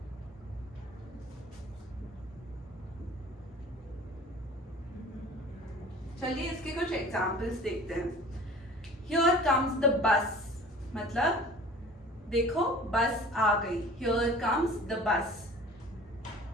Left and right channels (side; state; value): both; normal; correlation 0.44